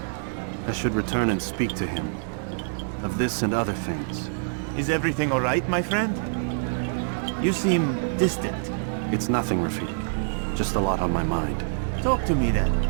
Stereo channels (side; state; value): left; silent; digital silence